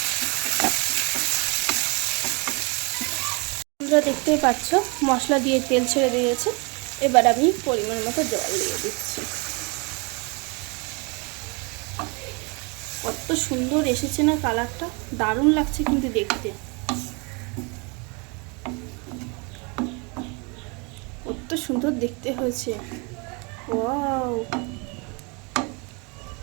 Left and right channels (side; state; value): left; quieter; 31.4 dB